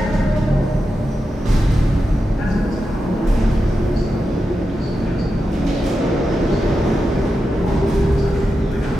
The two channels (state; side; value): normal; both; correlation 0.89